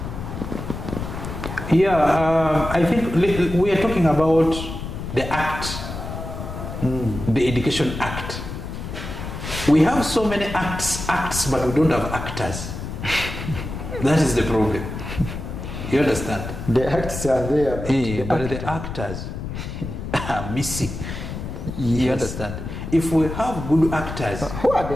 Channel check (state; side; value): noise; left; rumble, 7 dB below the sound